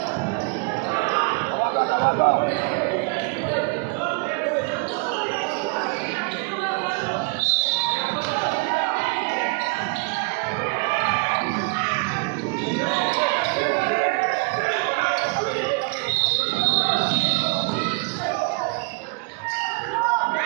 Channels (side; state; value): left; quieter; 30.7 dB